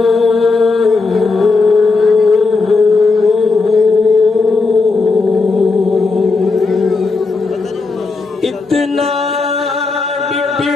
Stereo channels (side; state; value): right; quieter; 4.0 dB